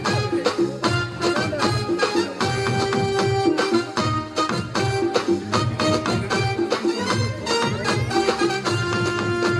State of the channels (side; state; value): both; identical; correlation 1.00